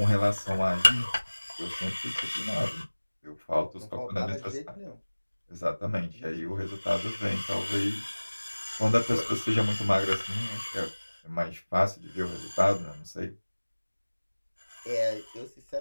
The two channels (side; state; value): both; inverted; correlation -1.00